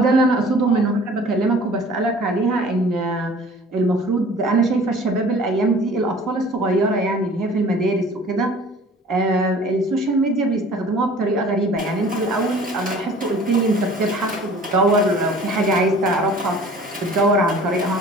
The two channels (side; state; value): both; normal; correlation 0.47